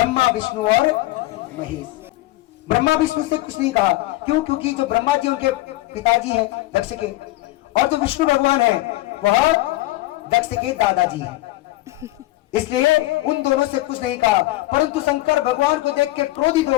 विष्णु और महेश। ब्रह्मा विष्णु से कुछ नहीं कहा, क्यों? क्योंकि जो ब्रह्मा जी उनके पिताजी हैं दक्ष के, और जो विष्णु भगवान हैं वह दक्ष के दादाजी हैं। इसलिए उन दोनों से कुछ नहीं कहा। परंतु शंकर भगवान को देख के क्रोधित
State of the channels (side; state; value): right; quieter; 17.8 dB